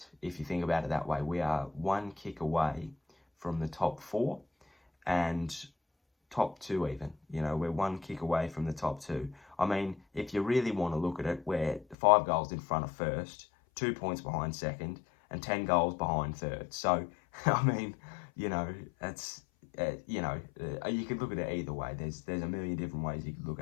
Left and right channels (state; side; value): drops out; right; at 12.0 s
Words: if you think about it that way. We are 1 kick away from the top 4 and top 2 even. We're 1 kick away from the top 2. I mean, if you really want to look at it, we're 5 goals in front of first, 2 points behind second, and 10 goals behind third. So, I mean, that's, you could look at it either way. There's a million different ways you could look